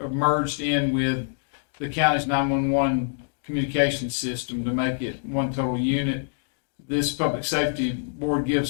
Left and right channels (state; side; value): silent; right; digital silence